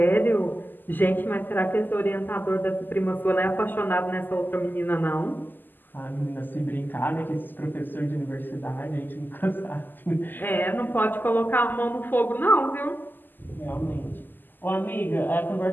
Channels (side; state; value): right; late; 0.089 ms